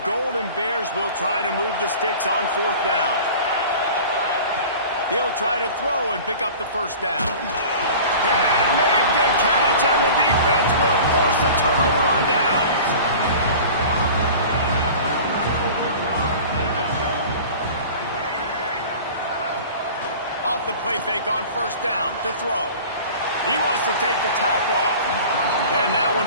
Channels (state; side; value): inverted; both; correlation -0.40